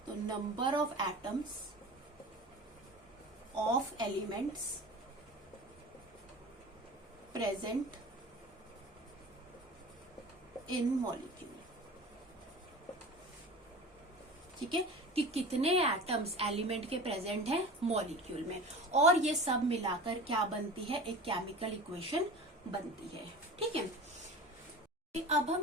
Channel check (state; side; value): normal; both; correlation 0.36